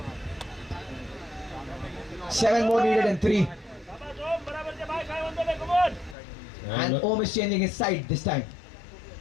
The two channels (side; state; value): right; drops out; at 6.2 s